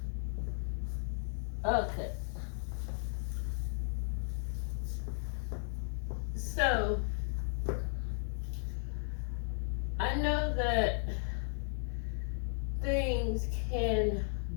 Okay, so I know that things can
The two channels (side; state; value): right; silent; 54 dB below the other